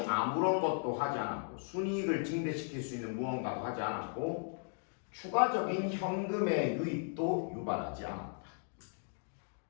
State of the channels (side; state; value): right; silent; 54 dB below the other